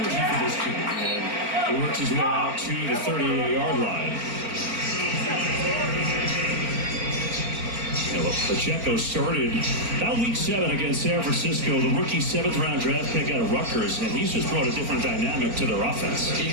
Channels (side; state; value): left; late; 4.4 ms